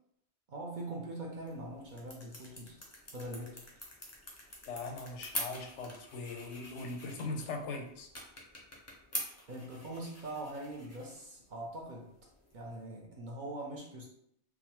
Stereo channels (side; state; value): both; normal; correlation 0.03